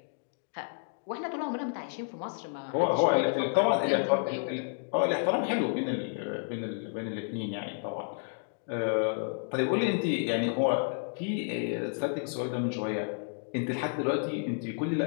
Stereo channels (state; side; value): silent; right; 57 dB below the other